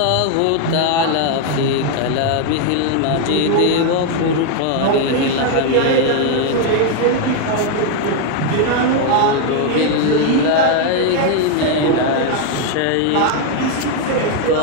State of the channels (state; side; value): different; both; correlation 0.00